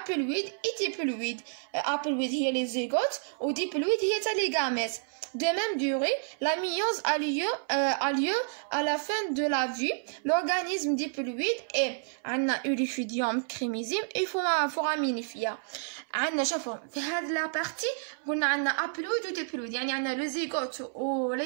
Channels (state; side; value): silent; left; 58 dB below the other